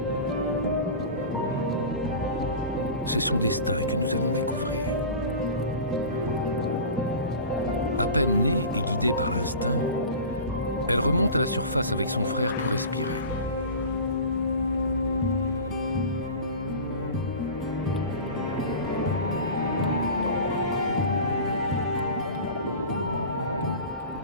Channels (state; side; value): inverted; both; correlation -0.34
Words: C'est son destin que nous allons découvrir. À peine née et guidée par l'instinct, elle remonte à la surface avec son frère pour respirer.